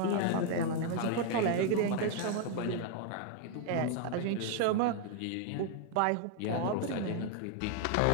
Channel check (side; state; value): both; different; correlation 0.00